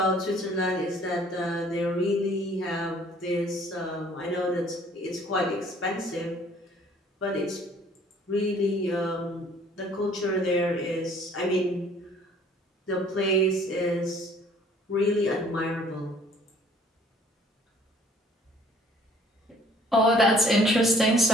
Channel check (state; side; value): normal; both; correlation 0.57